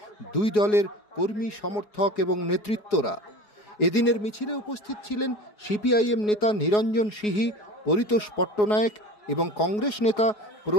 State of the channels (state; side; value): late; right; 4.8 ms